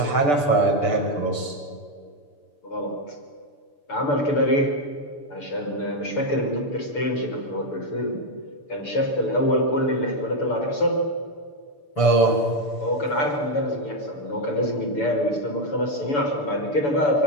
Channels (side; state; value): right; late; 6.9 ms